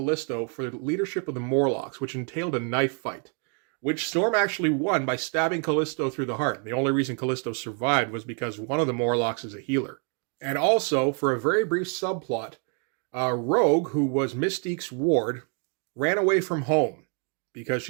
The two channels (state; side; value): quieter; left; 39.4 dB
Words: for the leadership of the Morlocks, which entailed a knife fight, which Storm actually won by stabbing Callisto through the heart. The only reason Callisto survived was because one of the Morlocks is a healer. And also, for a very brief subplot, Rogue, who was Mystique's ward, ran away from home because